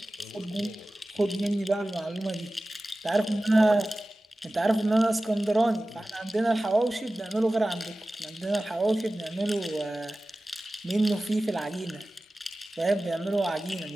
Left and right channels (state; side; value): normal; both; correlation 0.96